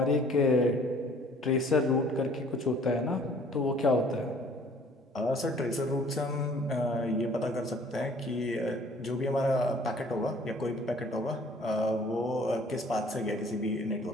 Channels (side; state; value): both; normal; correlation 0.55